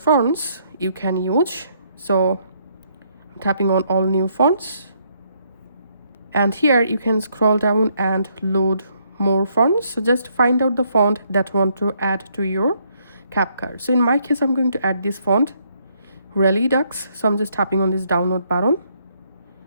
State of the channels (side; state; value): both; inverted; correlation -0.71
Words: you can use. So I'm tapping on all new fonts. And here you can scroll down and load more fonts. So just find out the font that you want to add to your CapCut. So in my case, I'm going to add this font, Redux. So I'm just tapping on this download button.